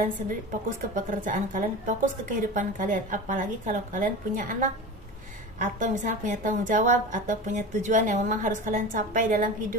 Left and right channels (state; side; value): normal; both; correlation 0.30